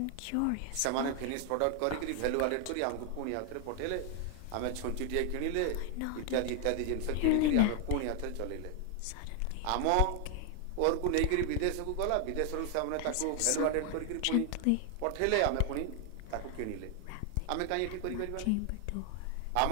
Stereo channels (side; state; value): both; different; correlation 0.00